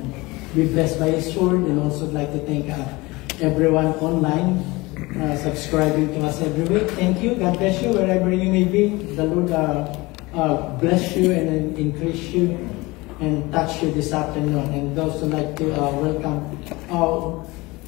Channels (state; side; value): quieter; right; 22.6 dB